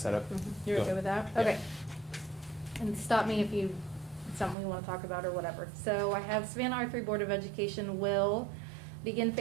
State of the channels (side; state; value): left; drops out; at 4.5 s